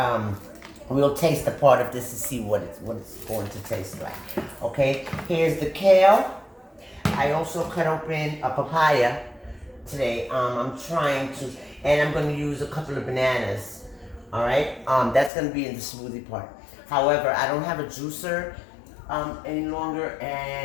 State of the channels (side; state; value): right; drops out; at 15.3 s